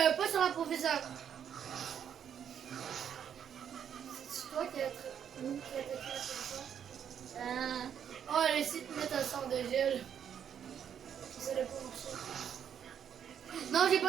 pas sur la professeure. C'est toi qui as attaqué la professeure. Oh, elle essaie de mettre un sort de gel. Ça n'a pas marché. Non, j'ai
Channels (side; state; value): left; quieter; 8.6 dB